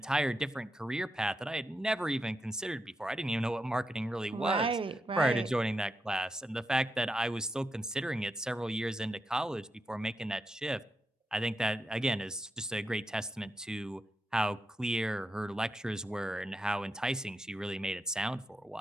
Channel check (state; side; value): normal; both; correlation 0.86